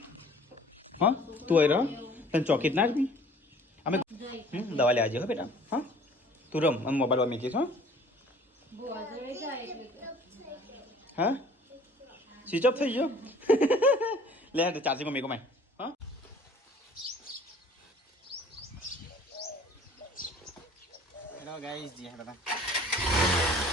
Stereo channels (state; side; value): normal; both; correlation 0.52